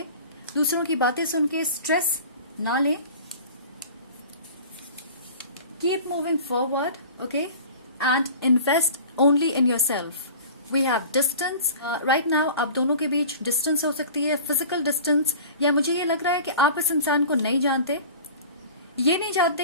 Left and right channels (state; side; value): inverted; both; correlation -0.40